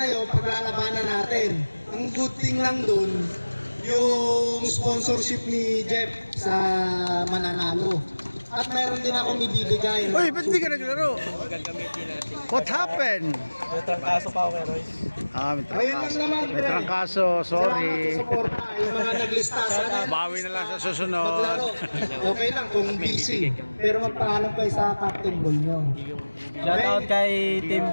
yun, paglalabanan natin. Ang good thing lang dun, yung sponsorship ni Jeff sa mananalo. At meron din akong ibibigay. Uy, ba't di ka naglaro? What happened? May trangkaso pa ako kay Roy. Ayun lang naman, May trangkaso, sorry. Salamat sa suporta. Yung mga naglista sana. Bawi na lang sa susunod. Maglaro. Okay lang kung busy. Pero magpaalam kayo sa captain ball nyo. Shout out kay Team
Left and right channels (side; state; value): both; inverted; correlation -1.00